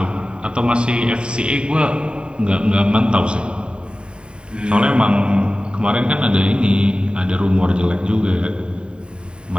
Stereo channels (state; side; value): late; left; 0.050 ms